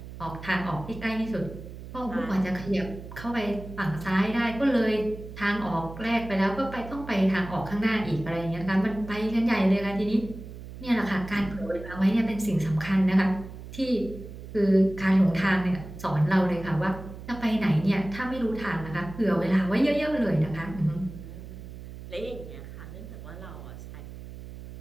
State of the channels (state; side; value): noise; right; hum, 13 dB below the sound